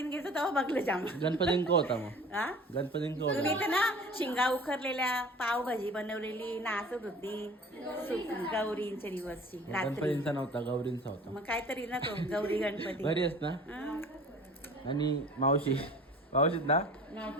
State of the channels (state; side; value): normal; both; correlation 0.44